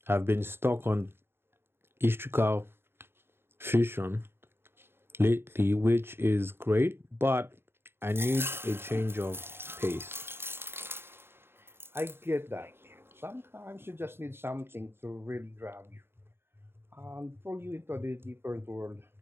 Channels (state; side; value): late; left; 0.11 ms